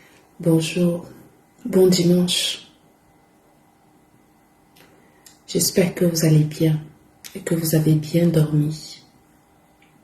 bonjour, bon dimanche. J'espère que vous allez bien et que vous avez bien dormi.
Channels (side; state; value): both; identical; correlation 1.00